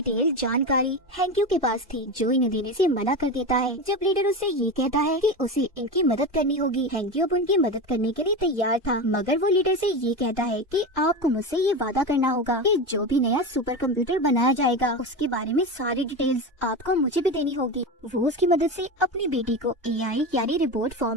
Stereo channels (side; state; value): both; normal; correlation 0.22